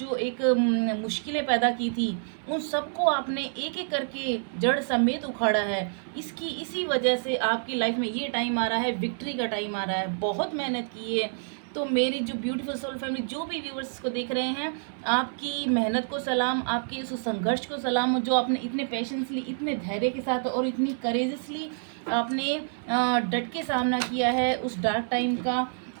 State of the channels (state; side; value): silent; left; 59 dB below the other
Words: एक मुश्किलें पैदा की थी, उन सबको आपने एक एक करके जड़ समेत उखाड़ा है। इसी वजह से आपकी लाइफ में ये टाइम आ रहा है, विक्ट्री का टाइम आ रहा है। बहुत मेहनत की है। तो मेरी जो ब्यूटीफुल सोल फैमिली, जो भी व्यूवर्स को देख रहे हैं, आपकी मेहनत को सलाम, आपके उस संघर्ष को सलाम, जो आपने इतने पेशेंसली, इतने धैर्य के साथ और इतनी करेजसली आपने डट के सामना किया है उस डार्क टाइम का।